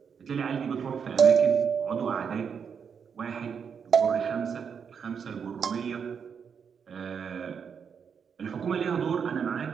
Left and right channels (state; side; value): quieter; left; 6.8 dB